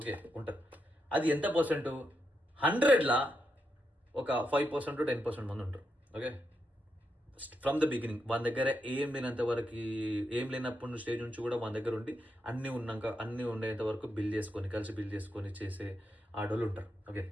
ఉంటారు. అది ఎంత పర్సెంట్? 100లా ఒక 5% 10% మంది ఉంటారు. ఓకే, ఫ్రమ్ ద బిగినింగ్ మన దగ్గర ఏం లేనంత వరకు, ఏం లేనప్పుడు స్టేజ్ నుంచి కూడా మన దగ్గర ఉండి అన్నీ ఉన్నాక అన్నీ ఉండేంత వరకు బిల్డ్ చేసుకొని, కలిసి బిల్డ్ చేసుకొని చేసే ఆడోళ్ళు ఉంటారు. ఓకే,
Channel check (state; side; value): normal; both; correlation 0.83